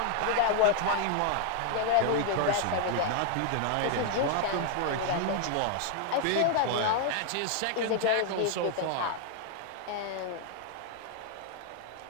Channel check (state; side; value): different; both; correlation 0.00